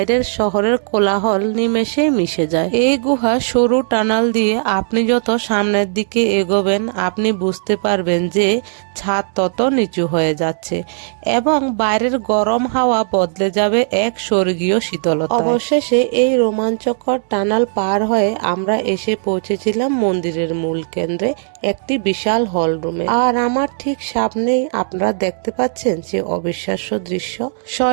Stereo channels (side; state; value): left; silent; digital silence